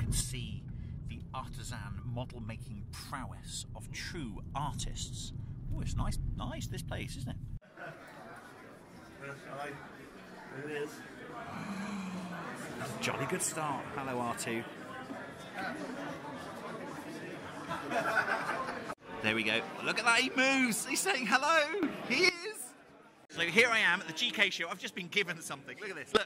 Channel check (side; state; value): both; identical; correlation 1.00